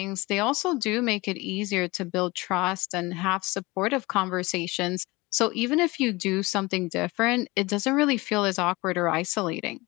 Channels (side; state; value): right; quieter; 22.7 dB